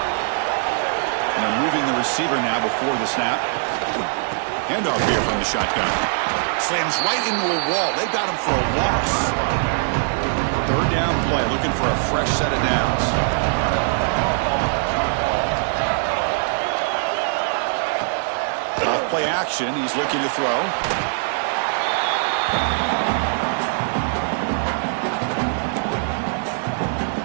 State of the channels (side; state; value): left; silent; 64 dB below the other